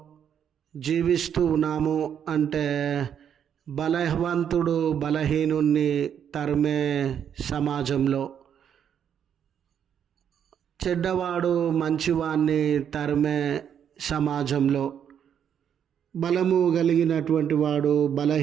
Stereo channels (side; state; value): left; quieter; 8.6 dB